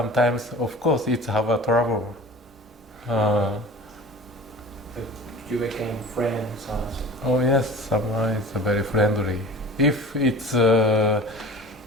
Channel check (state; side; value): normal; both; correlation 0.39